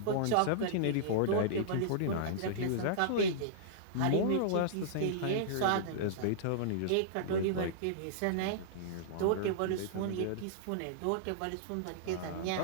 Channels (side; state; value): both; different; correlation -0.02